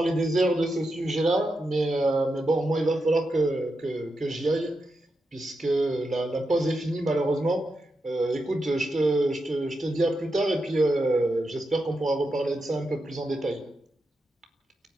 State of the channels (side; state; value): both; normal; correlation 0.87